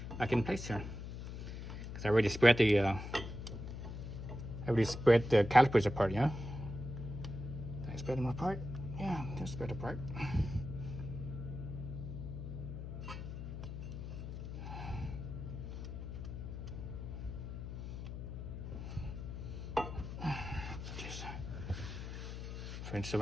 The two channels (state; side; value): noise; left; hum, 7 dB below the sound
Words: back in place here, because I already spread the calipers apart. Yeah, did I spread them apart? Yeah, they're spread apart. So